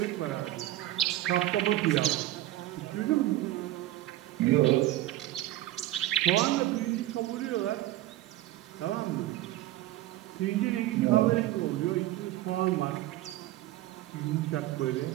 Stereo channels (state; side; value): quieter; left; 15.3 dB